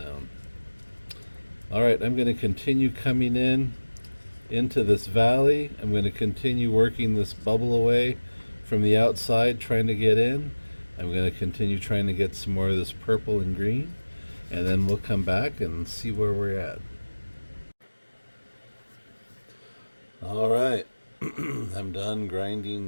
Alright, I'm going to continue coming into this valley. I'm going to continue working this bubble away from the outside, trying to get in. I'm going to continue trying to get some more of this purple and green, and then we'll come back and see where we're at. Alright, I'm done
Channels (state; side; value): inverted; both; correlation -1.00